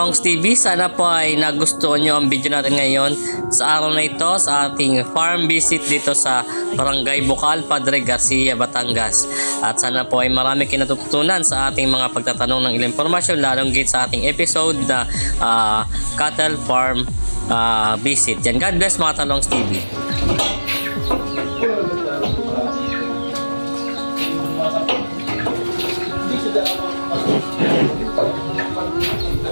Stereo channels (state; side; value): inverted; both; correlation -1.00